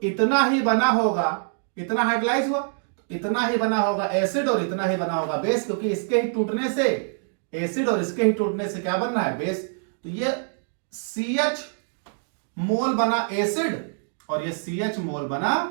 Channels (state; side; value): silent; left; digital silence